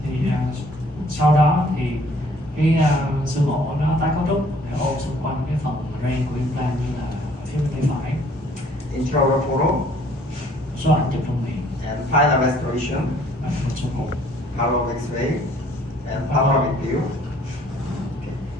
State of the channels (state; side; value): normal; both; correlation 0.59